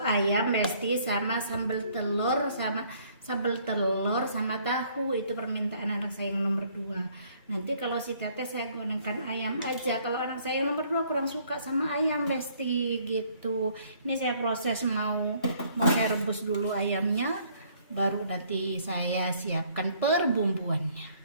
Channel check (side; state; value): both; inverted; correlation -0.62